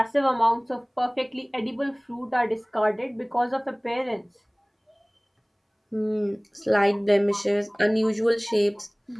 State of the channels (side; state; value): both; identical; correlation 1.00